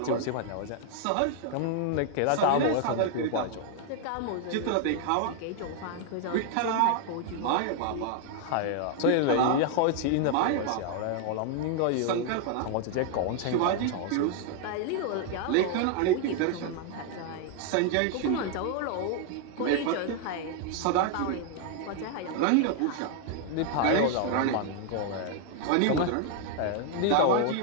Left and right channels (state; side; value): different; both; correlation 0.00